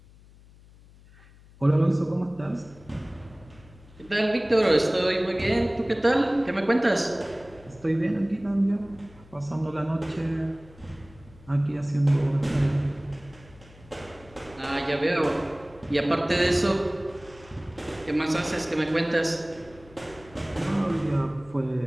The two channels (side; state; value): left; noise; hum, 24 dB below the sound